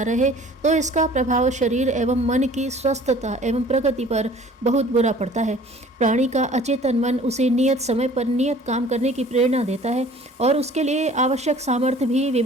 तो इसका प्रभाव शरीर एवं मन की स्वस्थता एवं प्रगति पर बहुत बुरा पड़ता है। प्राणी का अचेतन मन उसे नियत समय पर नियत काम करने की प्रेरणा देता है और उसके लिए आवश्यक सामर्थ्य भी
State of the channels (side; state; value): both; normal; correlation 0.49